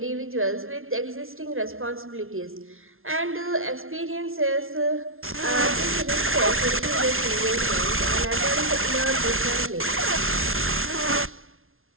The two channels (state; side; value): late; left; 0.61 ms